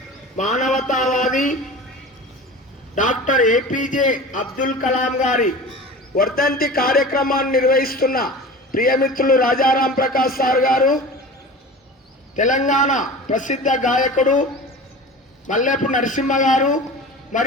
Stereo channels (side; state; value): both; normal; correlation 0.35